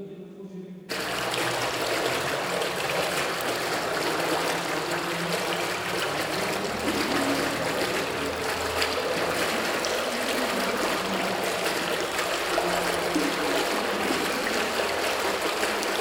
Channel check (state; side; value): identical; both; correlation 1.00